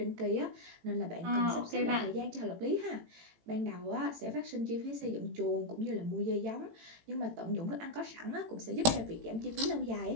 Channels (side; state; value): left; late; 18 ms